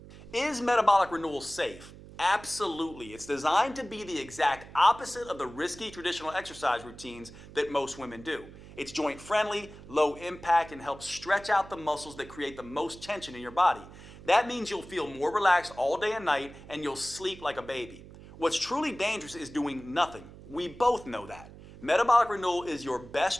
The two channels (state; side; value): noise; right; hum, 17 dB below the sound